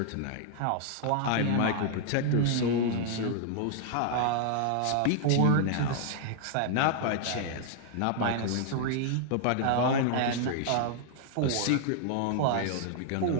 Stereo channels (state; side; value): different; both; correlation 0.00